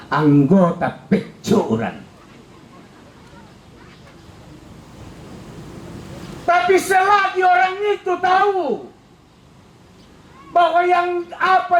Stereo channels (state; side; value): identical; both; correlation 1.00